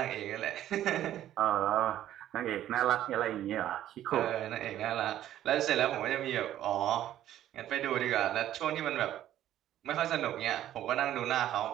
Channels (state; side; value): quieter; left; 12.3 dB